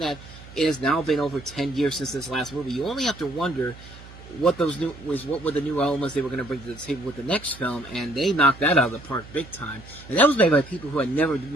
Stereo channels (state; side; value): noise; right; hum, 18 dB below the sound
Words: it has now been over 10 years since this last movie, you only have to wonder what were the new elements they were going to bring to the table with the next film, and they knocked that out of the park big time. And that was made by people who had never